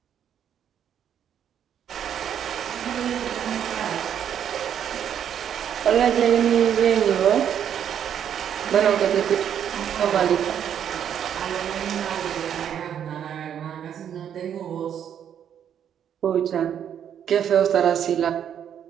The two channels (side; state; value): left; quieter; 9.1 dB